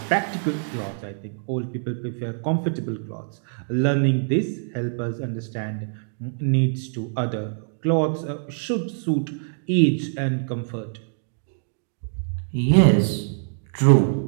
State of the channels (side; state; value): left; silent; digital silence